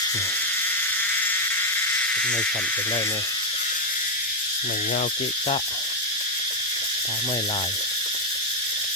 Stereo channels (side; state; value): both; normal; correlation 0.01